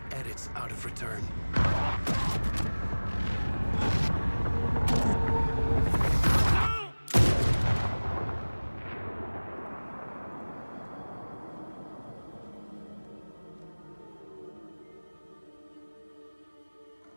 edits out of return.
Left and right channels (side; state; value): both; inverted; correlation -1.00